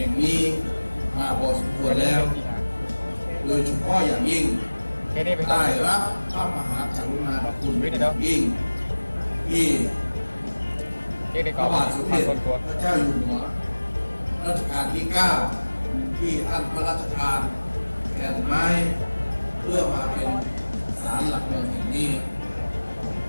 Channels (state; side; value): inverted; both; correlation -1.00